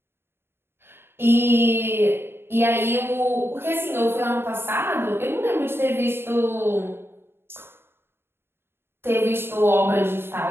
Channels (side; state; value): left; late; 0.11 ms